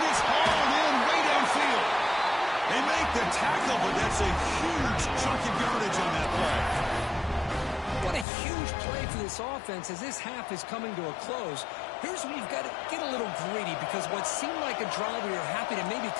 it's hauled in way downfield. They make the tackle, but that's a huge chunk of yardage on that play. What a huge play for this offense as this half is coming to a close. Here's where you've got to get a little greedy, because what seemed like a drive where you're happy to maybe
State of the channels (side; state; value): right; drops out; at 8.2 s